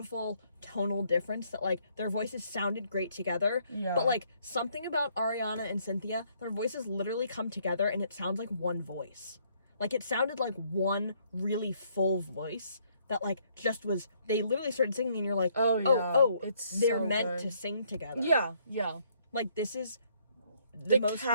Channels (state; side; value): inverted; both; correlation -0.68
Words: tonal difference that like their voices sounded great together. Yeah. But like something about Ariana and Cynthia, their voices literally come together and it sounds like one voice. Like it sounded like one really full voice that like just was. They literally started singing and you're like, Oh, yeah. It's they're so meant good. to sing together. Yeah. Like this is the most